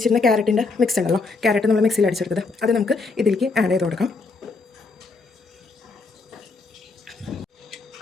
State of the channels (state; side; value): quieter; right; 4.0 dB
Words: ക്യാരറ്റിൻ്റെ മിക്സ് ഉണ്ടല്ലോ, ക്യാരറ്റ് നമ്മൾ മിക്സിയിൽ അടിച്ചെടുത്തത്, അത് നമുക്ക് ഇതിലേക്ക് ആഡ് ചെയ്ത് കൊടുക്കാം.